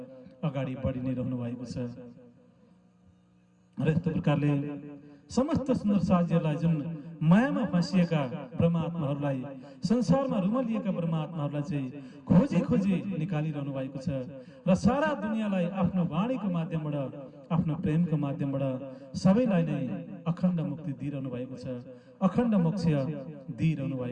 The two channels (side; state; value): both; identical; correlation 1.00